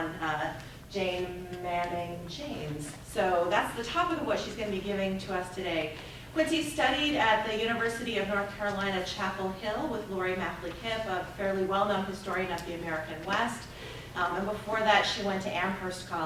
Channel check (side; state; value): both; identical; correlation 1.00